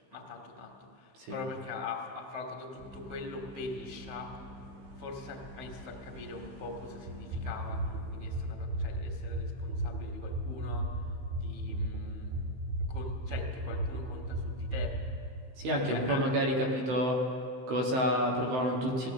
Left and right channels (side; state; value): left; late; 15 ms